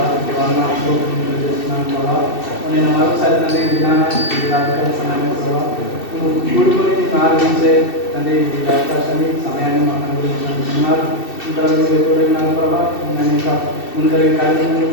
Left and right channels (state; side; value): late; right; 2.7 ms